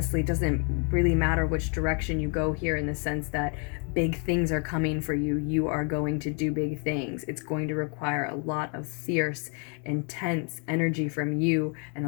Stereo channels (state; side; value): quieter; right; 38.3 dB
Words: doesn't really matter which direction you go here, in the sense that big things are coming for you. You are going to do big things. It's going to require a lot of fierce, intense energy from you and